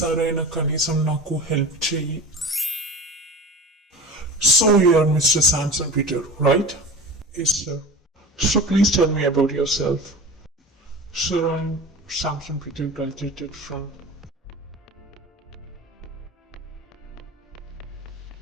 కనీసం నాకు హెల్ప్ చేయి. So you are mister Samson Peter, right? Yes sir. So please tell me about yourself. Sir, I'm Samson Peter, graduated from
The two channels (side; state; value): both; normal; correlation 0.34